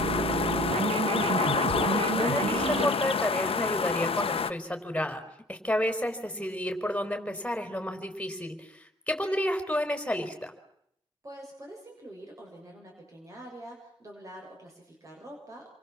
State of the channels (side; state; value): both; normal; correlation 0.50